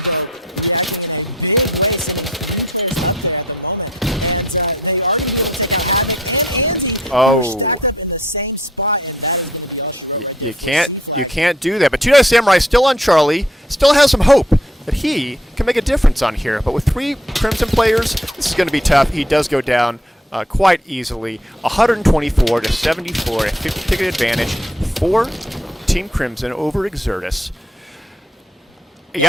though, reacting in a big way, sending 3 players up there at the moment. And they are going to be able to take out Havoc and Andy, who are stacked up in the same spot. And that is going to be all she wrote right there for C flag. You can't do that. But Two Dice Samurai still on Charlie, still has some hope that he can make a difference on here. But with 3 Crimson players, this is going to be tough. He does go down quite easily. 124 to 74, a 50-ticket advantage for Team Crimson over Exertus. You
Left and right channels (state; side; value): normal; both; correlation 0.65